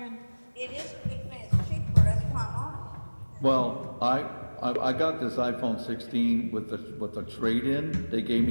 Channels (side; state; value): both; inverted; correlation -1.00